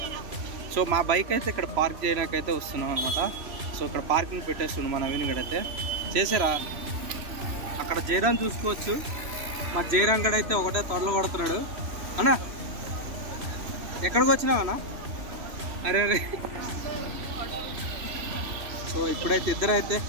సో మా బైక్ అయితే ఇక్కడ పార్క్ చేయడానికైతే వస్తున్నాం అనమాట. సో ఇక్కడ పార్కింగ్ పెట్టేస్తున్నాం మా నవీన్ గడ్ అయితే. చేసారా అక్కడ జయరాం చూసుకోవచ్చు. మా జయరాం గడ్ అయితే ఒకటే తొడలు కొడుతున్నాడు. అన్నా ఎక్కడికి వచ్చినావన్నా? అరే అరే. సో ఇప్పుడైతే ఇద్దరు అయితే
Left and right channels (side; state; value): left; late; 3.1 ms